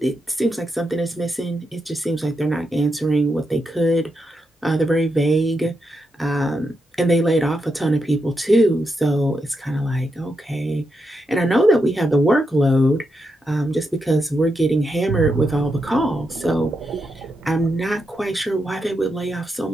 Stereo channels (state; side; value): normal; both; correlation 0.84